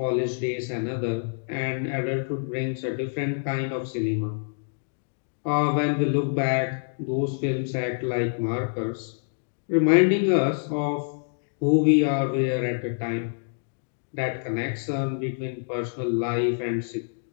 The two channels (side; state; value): right; silent; digital silence